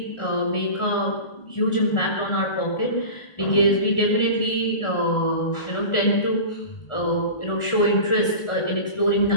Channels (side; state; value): right; late; 1.4 ms